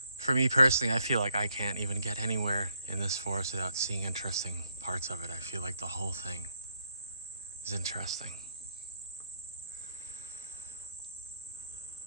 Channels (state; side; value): inverted; both; correlation -0.74